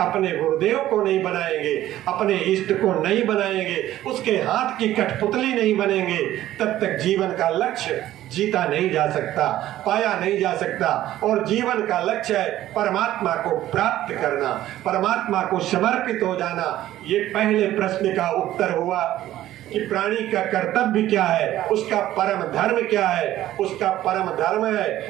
अपने गुरुदेव को नहीं बनाएंगे, अपने इष्ट को नहीं बनाएंगे, उसके हाथ की कठपुतली नहीं बनेंगे, तब तक जीवन का लक्ष्य जीता नहीं जा सकता, पाया नहीं जा सकता। और जीवन का लक्ष्य है परमात्मा को प्राप्त करना, परमात्मा को समर्पित हो जाना। ये पहले प्रश्न का उत्तर हुआ कि प्राणी का कर्तव्य क्या है, उसका परम धर्म क्या है। उसका परम धर्म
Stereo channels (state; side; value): quieter; left; 13.8 dB